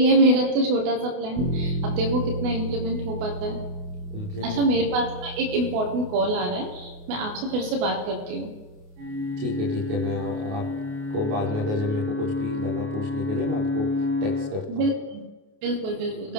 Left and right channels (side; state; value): left; late; 28 ms